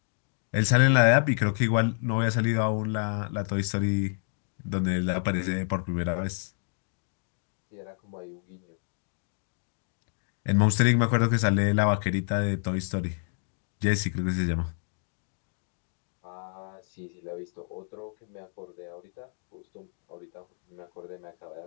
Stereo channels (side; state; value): right; silent; digital silence